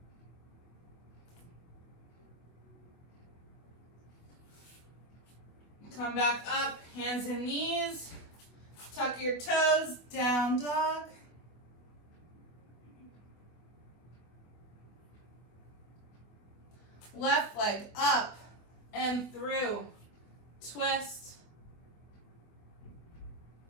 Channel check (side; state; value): right; late; 24 ms